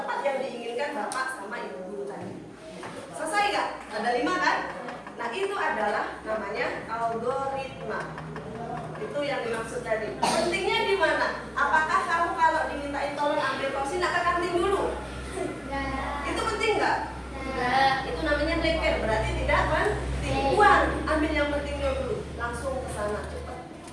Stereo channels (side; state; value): both; identical; correlation 1.00